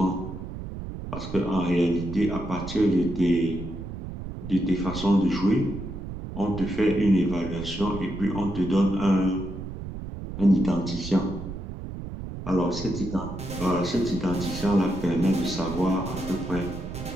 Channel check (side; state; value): right; noise; rumble, 8 dB below the sound